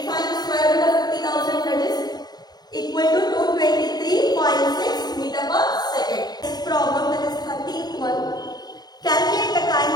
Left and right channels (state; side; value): late; right; 0.19 ms